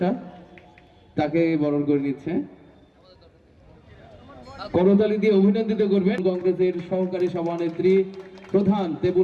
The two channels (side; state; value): both; identical; correlation 1.00